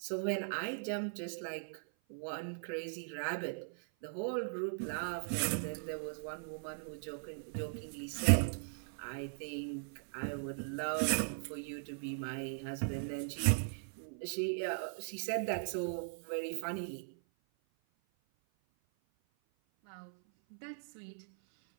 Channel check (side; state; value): left; silent; 52 dB below the other